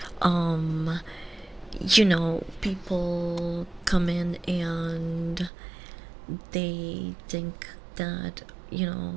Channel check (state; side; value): drops out; left; at 5.5 s